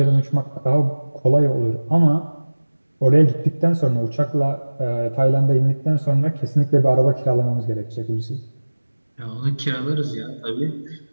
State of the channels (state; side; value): inverted; both; correlation -1.00